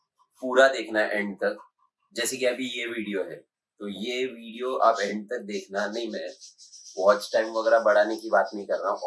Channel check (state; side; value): identical; both; correlation 1.00